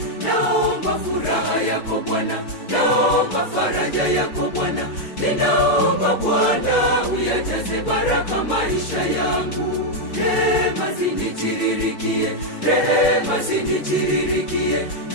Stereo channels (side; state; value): right; late; 4.6 ms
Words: Naomba furaha yako Bwana, naomba faraja yako Bwana. Ninaomba Bwana uyajaze baraka maisha yangu. Rehema zinitiririkie, rehema zinitiririkie.